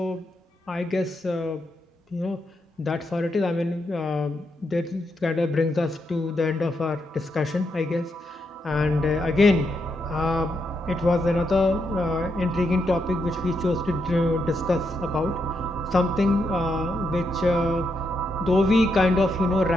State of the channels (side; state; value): both; normal; correlation 0.81